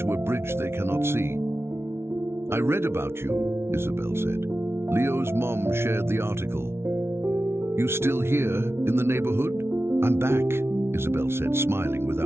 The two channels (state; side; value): late; left; 0.12 ms